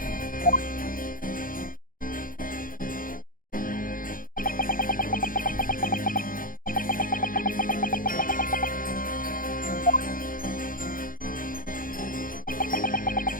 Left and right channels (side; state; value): right; late; 0.40 ms